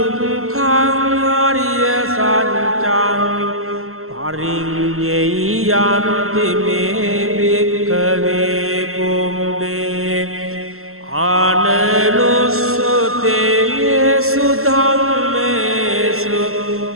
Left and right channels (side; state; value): left; late; 0.62 ms